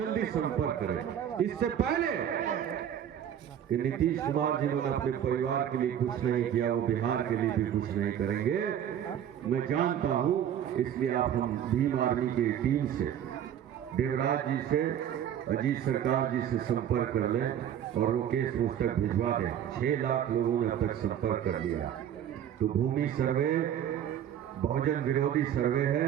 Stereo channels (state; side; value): quieter; left; 9.9 dB